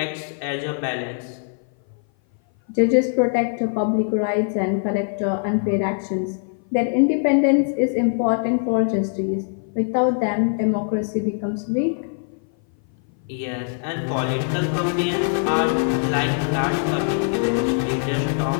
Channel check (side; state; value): right; silent; 57 dB below the other